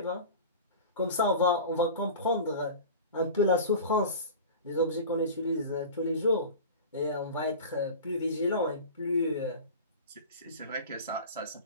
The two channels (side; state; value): both; inverted; correlation -0.34